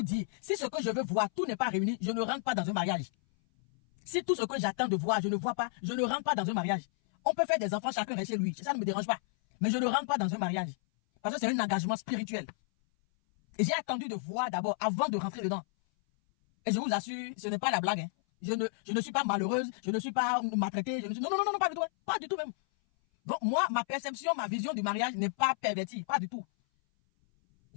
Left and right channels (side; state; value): right; silent; 56 dB below the other